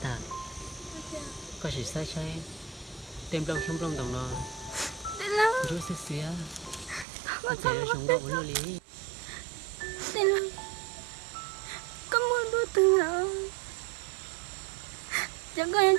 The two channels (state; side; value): drops out; left; at 7.1 s